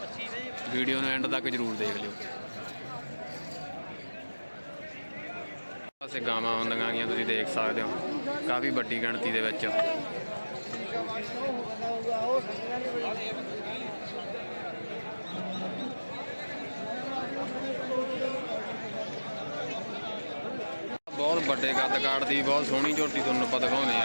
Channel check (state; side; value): inverted; both; correlation -1.00